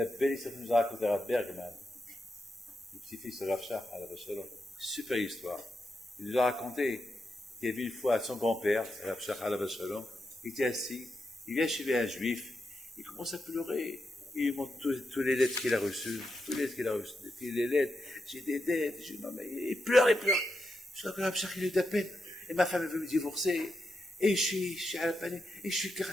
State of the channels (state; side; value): normal; both; correlation 0.85